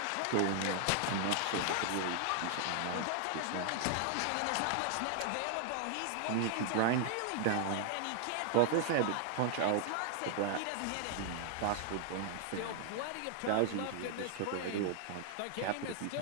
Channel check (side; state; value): both; different; correlation 0.00